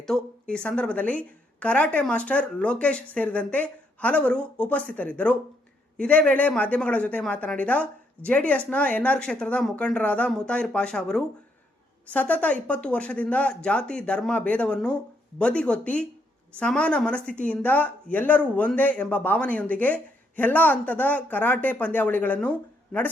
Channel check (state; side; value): normal; both; correlation 0.74